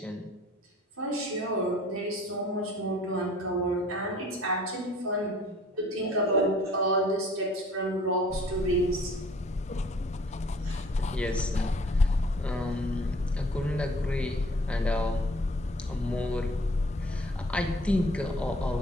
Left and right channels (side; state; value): both; normal; correlation 0.53